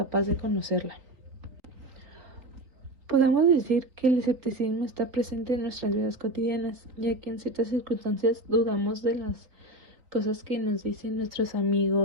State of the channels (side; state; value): left; late; 3.7 ms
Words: de conocerla. Podemos decir que el escepticismo está presente en nuestras vidas cotidianas, ya que en ciertas circunstancias dudamos de las cosas que nos dicen nuestros